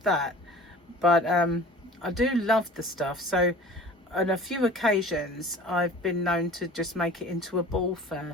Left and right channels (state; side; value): normal; both; correlation 0.43